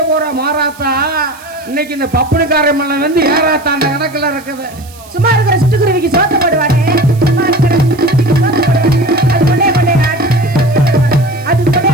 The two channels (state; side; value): noise; right; hiss, 23 dB below the sound